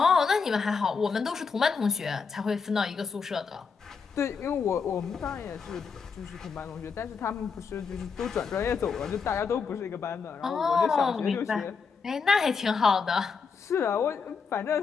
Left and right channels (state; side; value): quieter; right; 5.5 dB